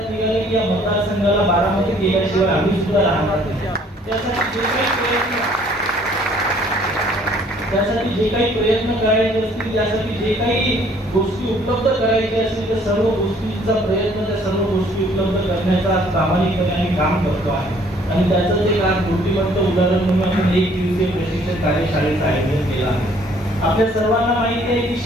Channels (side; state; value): both; normal; correlation 0.60